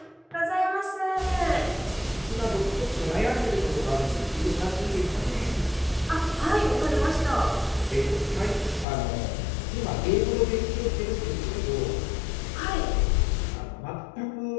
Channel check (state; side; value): drops out; right; at 8.8 s